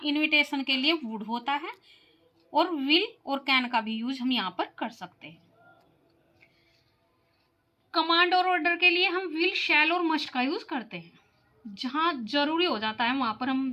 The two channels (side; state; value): both; identical; correlation 1.00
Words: इनविटेशन के लिए वुड होता है, और विल और कैन का भी यूज हम यहाँ पर कर सकते हैं। कमांड और ऑर्डर के लिए हम विल, शैल और मस्ट का यूज करते हैं। जहां जरूरी हो जाता है वहां पर